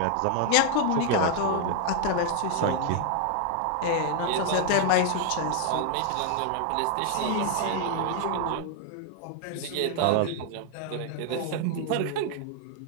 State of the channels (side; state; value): both; different; correlation 0.00